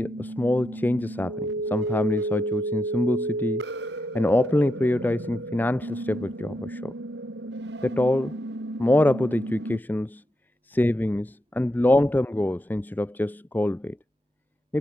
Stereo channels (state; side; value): normal; both; correlation 0.84